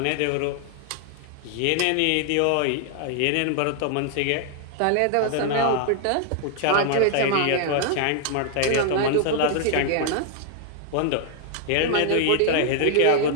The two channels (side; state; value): both; different; correlation 0.00